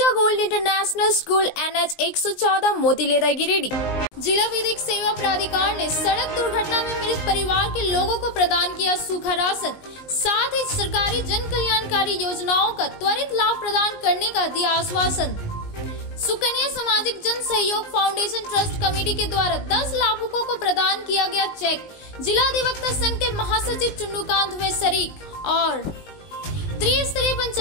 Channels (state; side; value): late; right; 19 ms